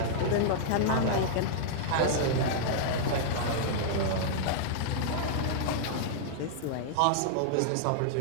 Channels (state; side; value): different; both; correlation -0.01